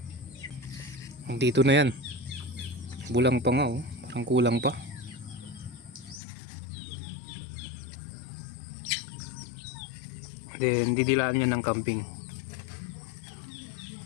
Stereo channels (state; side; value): drops out; right; at 6.2 s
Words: Dito na yan, bulang pa nga oh, parang kulang pa. Then didilaan niya ng kambing.